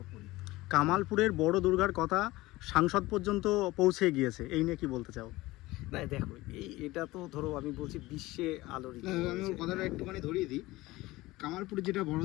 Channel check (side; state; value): right; quieter; 19.2 dB